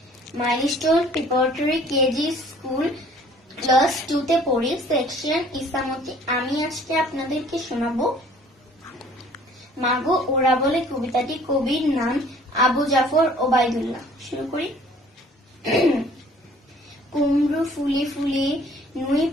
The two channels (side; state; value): both; normal; correlation 0.54